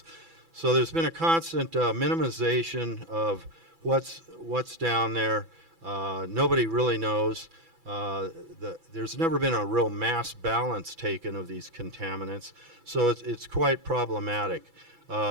So there's been a constant minimization of what's down there. Nobody really knows. There's never been a real mass balance taken of these contaminants, so it's quite problematic.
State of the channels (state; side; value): late; left; 6.0 ms